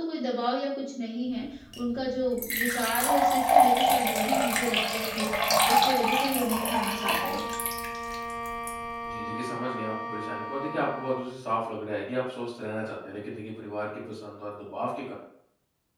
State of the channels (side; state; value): both; identical; correlation 1.00